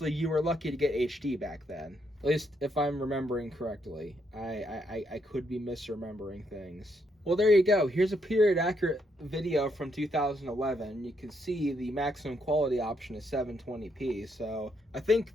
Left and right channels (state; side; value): normal; both; correlation 0.76